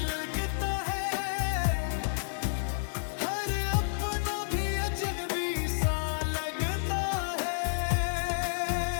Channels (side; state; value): right; silent; digital silence